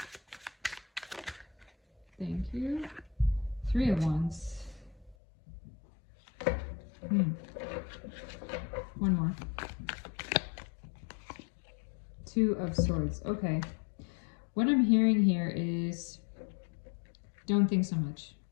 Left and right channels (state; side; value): drops out; right; at 5.2 s